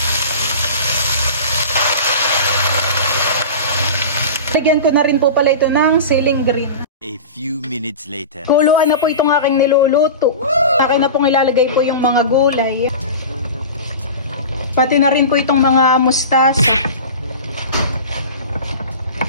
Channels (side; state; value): both; inverted; correlation -0.32